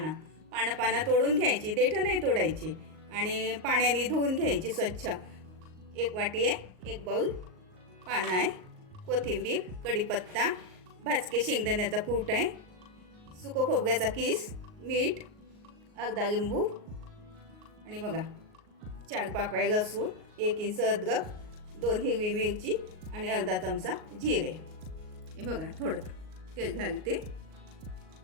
तोडून घ्यायची, देठं नाही तोडायची, आणि पाण्याने धुवून घ्यायची स्वच्छ. एक वाटी आहे, एक बाऊल पानं आहे, कोथिंबीर, कढीपत्ता, भाजके शेंगदाण्याचा कूट आहे, सुकं खोबऱ्याचा किस, मीठ, अर्धा लिंबू, आणि बघा 4 पाकळ्या लसूण, 1 इंच अद्रक, 2 हिरवी मिरची आणि अर्धा चमचा जिरे. हे बघा, थोडं तेल घालते.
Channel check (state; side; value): late; left; 38 ms